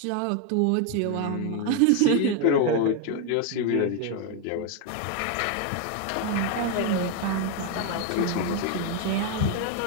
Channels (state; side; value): different; both; correlation 0.01